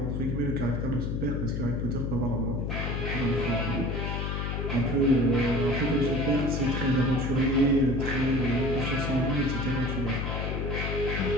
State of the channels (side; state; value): left; noise; hum, 1 dB below the sound